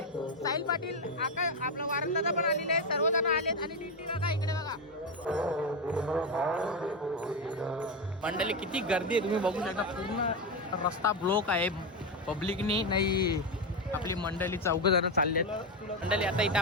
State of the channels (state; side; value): normal; both; correlation 0.10